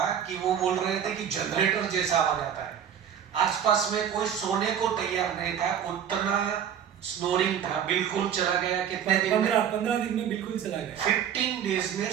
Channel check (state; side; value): quieter; left; 8.9 dB